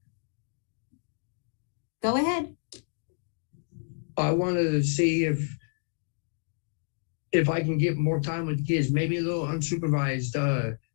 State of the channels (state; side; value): silent; right; digital silence